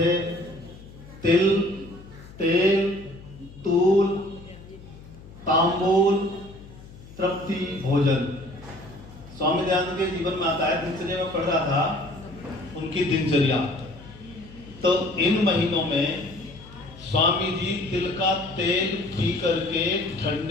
तिल, तेल, तूल, तांबूल, तृप्ति, भोजन, स्वामी दयानंद के जीवन में आता है। दिनचर्या में पढ़ रहा था उनकी दिनचर्या, तो इन महीनों में स्वामी जी तिल का तेल पी करके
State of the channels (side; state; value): left; noise; hum, 19 dB below the sound